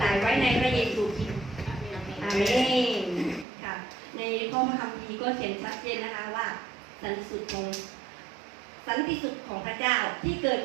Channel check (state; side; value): drops out; left; at 3.5 s